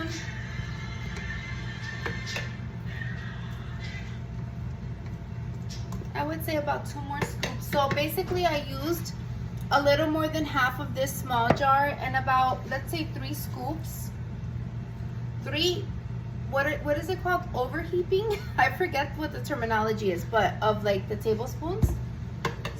I would say about 2 more scoops. So basically I used a little more than half of this small jar and about, let's say 3 scoops. 3, what is it called? Overheaping? I forget what the terminology is, but of like the tablespoons.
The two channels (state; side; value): identical; both; correlation 1.00